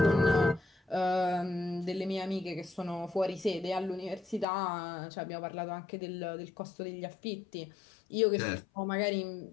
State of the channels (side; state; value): right; drops out; at 4.5 s